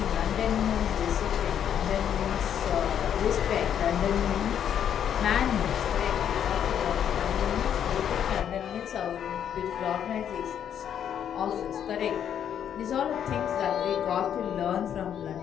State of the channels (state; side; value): quieter; right; 9.2 dB